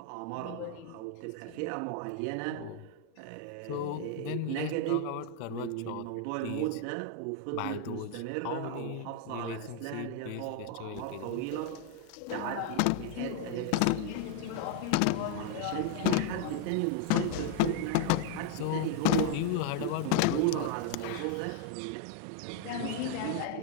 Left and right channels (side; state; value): both; different; correlation 0.00